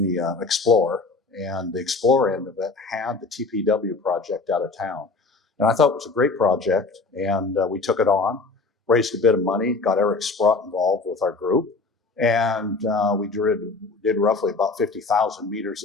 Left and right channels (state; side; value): quieter; right; 3.9 dB